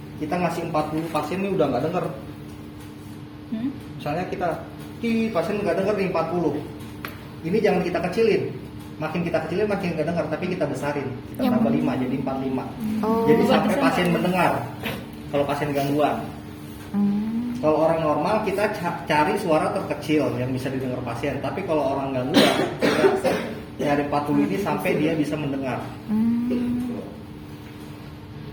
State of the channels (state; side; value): identical; both; correlation 1.00